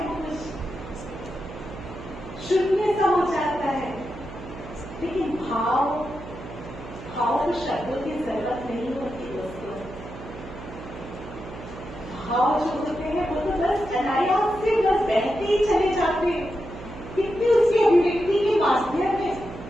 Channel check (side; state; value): right; noise; hum, 13 dB below the sound